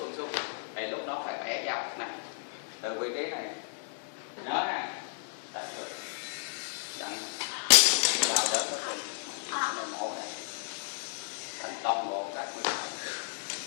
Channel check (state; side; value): silent; right; digital silence